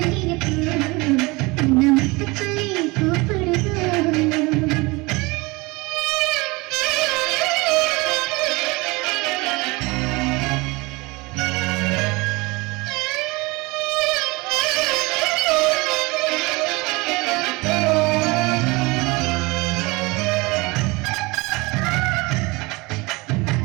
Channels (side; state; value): left; quieter; 24.5 dB